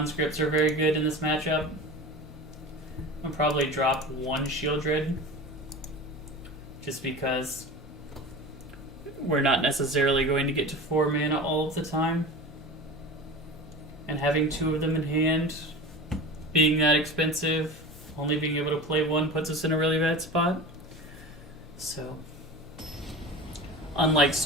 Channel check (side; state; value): both; normal; correlation 0.32